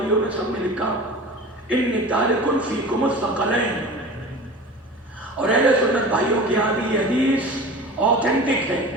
نے سب نے لکھا انی تارک فیکم الثقلین، اور اہل سنت بھائیوں کے یہاں بھی یہ حدیث اوتھینٹک ہے،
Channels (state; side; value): normal; both; correlation 0.36